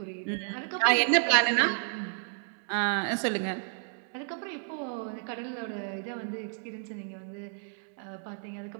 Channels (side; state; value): left; silent; 57 dB below the other